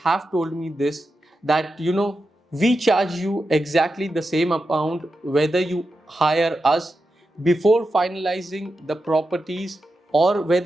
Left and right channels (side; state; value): both; normal; correlation 0.89